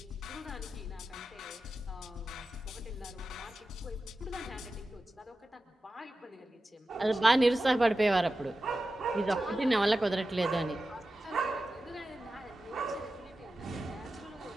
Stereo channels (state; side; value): normal; both; correlation 0.93